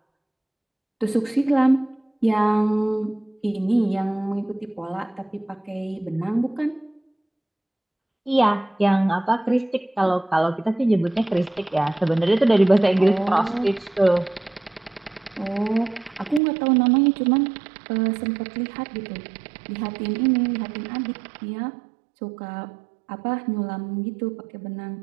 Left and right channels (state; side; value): drops out; left; at 16.4 s